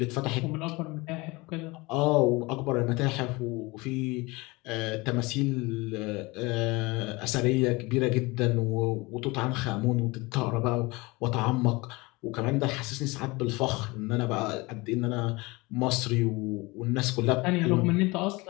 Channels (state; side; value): quieter; right; 23.8 dB